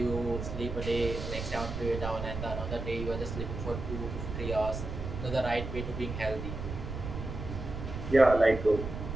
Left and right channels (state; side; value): noise; right; rumble, 6 dB below the sound